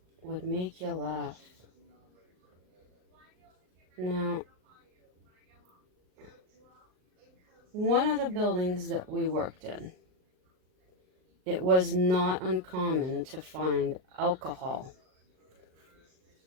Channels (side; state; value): left; late; 39 ms